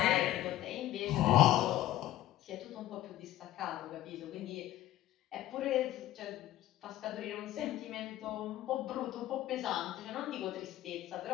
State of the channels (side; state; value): right; quieter; 14.3 dB